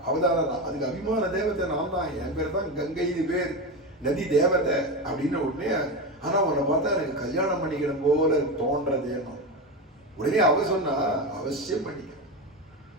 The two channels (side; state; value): both; normal; correlation 0.18